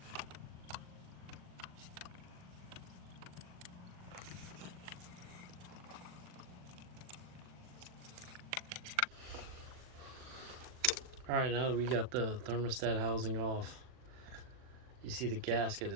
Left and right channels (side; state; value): left; late; 39 ms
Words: All right, now that we got the thermostat housing off, you see the gasket